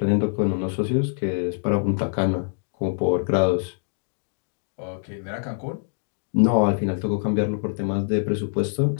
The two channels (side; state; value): right; silent; 62 dB below the other